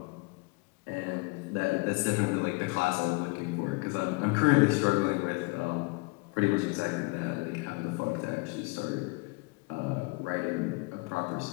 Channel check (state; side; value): quieter; right; 27.1 dB